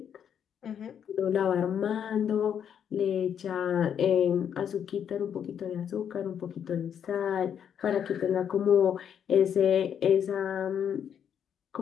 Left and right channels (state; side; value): quieter; right; 8.5 dB